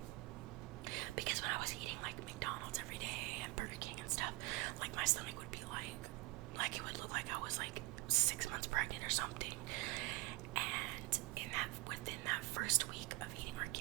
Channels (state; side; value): quieter; left; 22.7 dB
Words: Because when I was eating, like, McDonald's every day and Burger King and stuff, like, my stomach would be like, it would look like I was, like, 6 months pregnant or something. And within that first week of eating